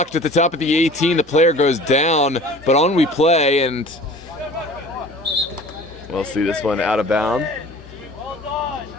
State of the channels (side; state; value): both; normal; correlation 0.44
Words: at the top of the 18. The player goes down, but on we play, and we'll see this one out of bounds.